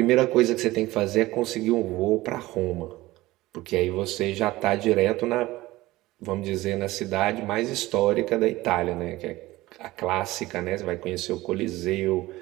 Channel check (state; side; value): quieter; left; 18.3 dB